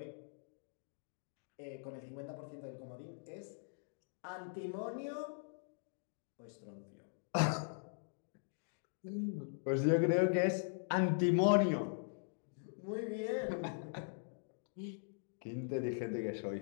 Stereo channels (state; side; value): silent; right; digital silence